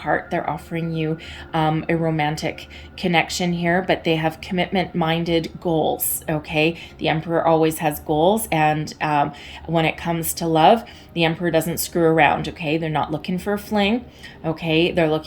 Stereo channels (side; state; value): both; identical; correlation 1.00